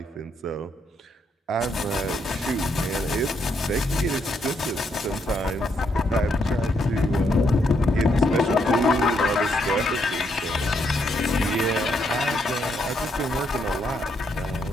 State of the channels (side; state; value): both; normal; correlation 0.76